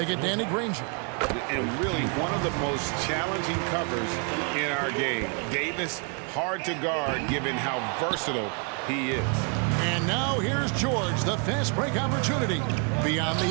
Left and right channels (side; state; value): left; quieter; 37.3 dB